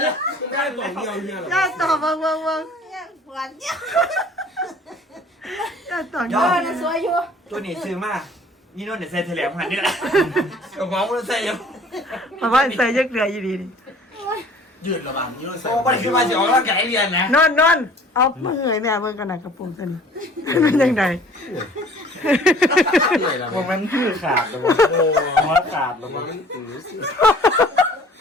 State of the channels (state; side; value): normal; both; correlation 0.51